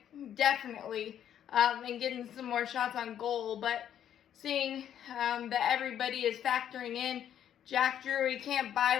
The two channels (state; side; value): quieter; right; 10.0 dB